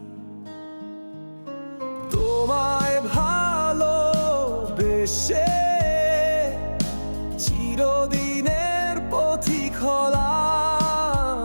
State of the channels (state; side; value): inverted; both; correlation -1.00